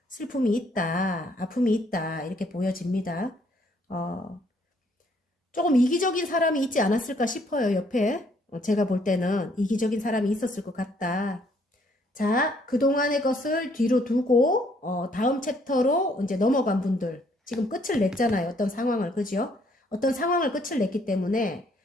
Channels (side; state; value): both; normal; correlation 0.66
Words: 슬픔이 있다, 아픔이 있다 이렇게 보여집니다. 조금 이기적인 사람이 있지 않았을까 싶어요. 옆에 제가 볼 때는 이기적인 사람이 있었을 것 같다. 자, 그동안의 것을 뒤로 두고 다음 챕터로 이제 넘어간 분들 지금 끝을 냈잖아요. 어떤 상황을, 그죠? 어떤 상황을 끝을 냈기 때문에